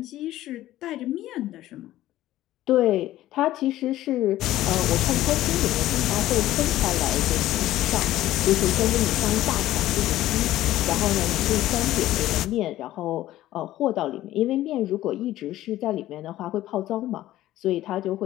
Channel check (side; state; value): right; quieter; 14.7 dB